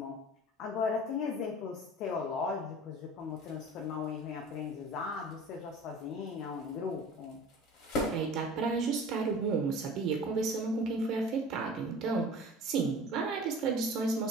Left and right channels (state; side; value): normal; both; correlation 0.41